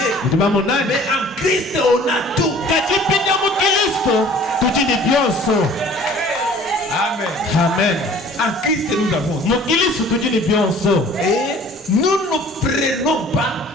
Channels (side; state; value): both; normal; correlation 0.50